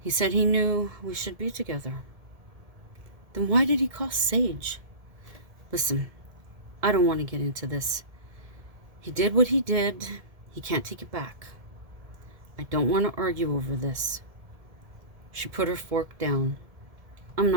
said he knew we should be together. Then why did he call Sage? Listen, I don't want to get into this. He did what he did. He can't take it back. I don't want to argue over this. She put her fork down. I'm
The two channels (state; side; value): late; left; 1.7 ms